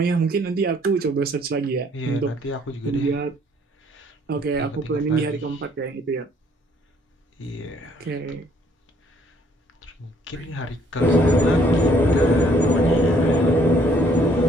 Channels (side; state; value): both; normal; correlation 0.63